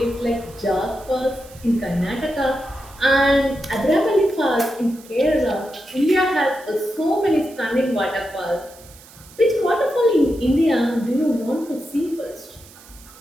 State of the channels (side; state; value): right; noise; hiss, 22 dB below the sound